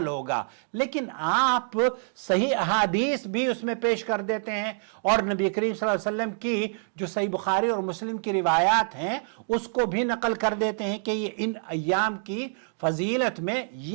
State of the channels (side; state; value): left; silent; digital silence